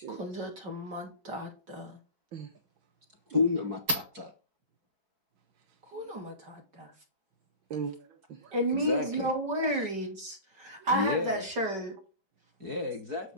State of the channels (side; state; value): left; late; 4.6 ms